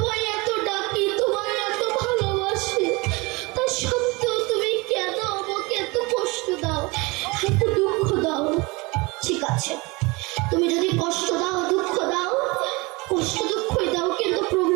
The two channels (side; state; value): left; quieter; 25.4 dB